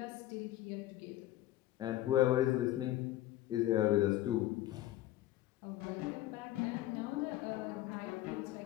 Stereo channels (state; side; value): quieter; right; 14.7 dB